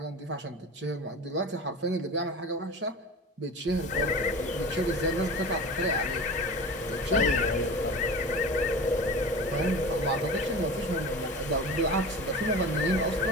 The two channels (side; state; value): both; normal; correlation 0.34